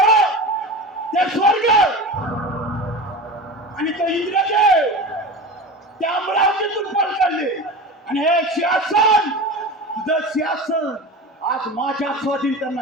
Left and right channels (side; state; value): both; normal; correlation 0.30